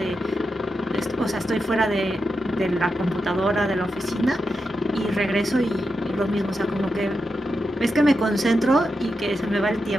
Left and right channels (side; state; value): both; normal; correlation 0.87